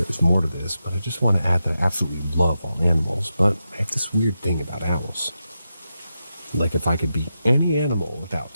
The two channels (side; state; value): both; inverted; correlation -0.88